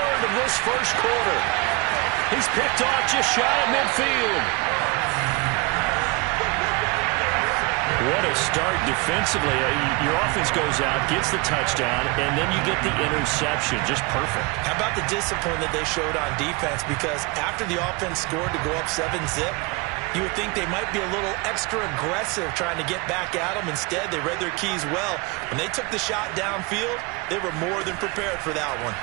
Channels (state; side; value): quieter; left; 26.8 dB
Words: of this first quarter. He's picked off just shy of midfield. What a start defensively. Your offense goes out, gets the touchdown, and then you get the interception. Just perfect. How about the discipline that they showed on defense? Because after the offense scored to go up 7-zip, you would think they might be a little extra aggressive trying to get back at them. Instead, they read their keys well. When they took the shot downfield, they were more than prepared for that one.